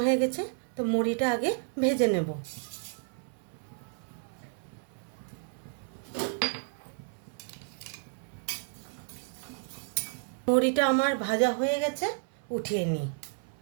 হয়ে গেছে। তো মুড়িটা আগে ভেজে নেব। মুড়িটা আমার ভাজা হয়ে গেছে, উঠিয়ে নিই।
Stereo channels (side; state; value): left; silent; 57 dB below the other